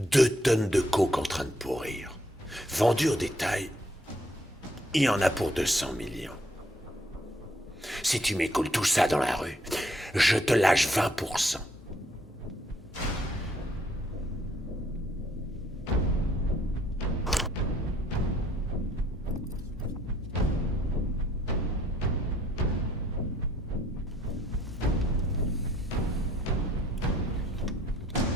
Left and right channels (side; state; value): both; normal; correlation 0.66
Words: 2 tonnes de coke en train de pourrir. Vendu au détail, il y en a pour 200 millions. Si tu m'écoules tout ça dans la rue, je te lâche 20%.